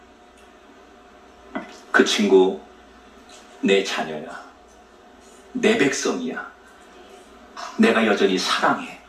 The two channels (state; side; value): identical; both; correlation 1.00